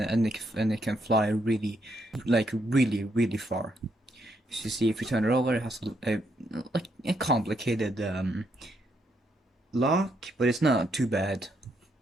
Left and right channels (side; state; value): both; normal; correlation 0.76